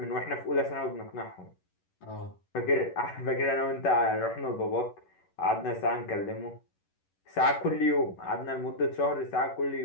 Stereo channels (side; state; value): right; late; 11 ms